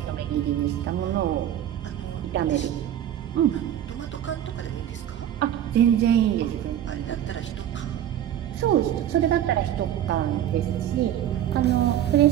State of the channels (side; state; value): left; quieter; 11.0 dB